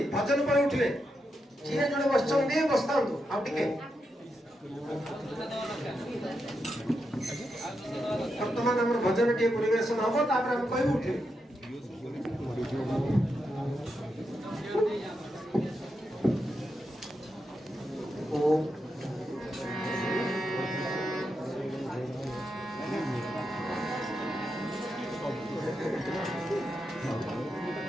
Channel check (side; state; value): both; normal; correlation 0.85